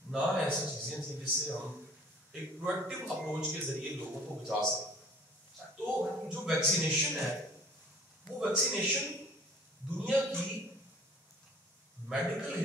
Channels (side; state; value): both; normal; correlation 0.50